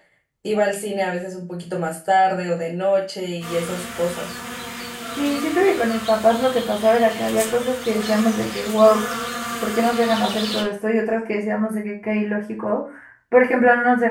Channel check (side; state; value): both; identical; correlation 1.00